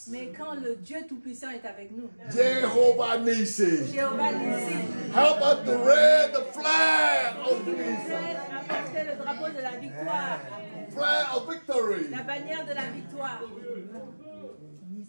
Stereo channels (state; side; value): inverted; both; correlation -1.00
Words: Mais quand le Dieu Tout-Puissant est avec nous, Jehovah Nissi, Jéhovah Nissi, help us to raise the flag of qui nous peace, aide à porter le drapeau de la victoire, flag of victory. la bannière de la victoire.